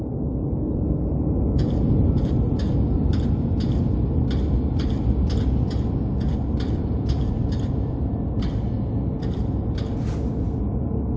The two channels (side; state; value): both; identical; correlation 1.00